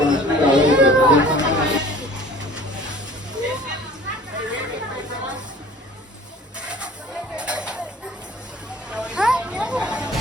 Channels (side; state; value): both; normal; correlation 0.47